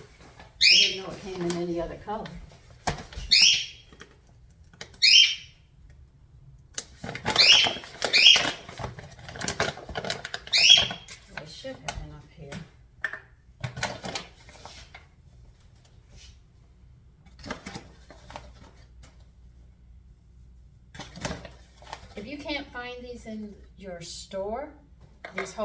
didn't know it came in any other color. I should have enough here. If you can't find these in your store, these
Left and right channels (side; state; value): both; identical; correlation 1.00